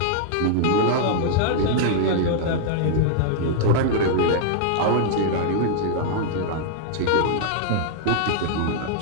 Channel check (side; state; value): both; different; correlation -0.01